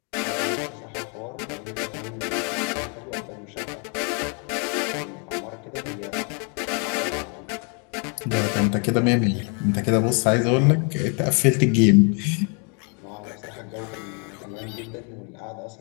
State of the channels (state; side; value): quieter; right; 37.5 dB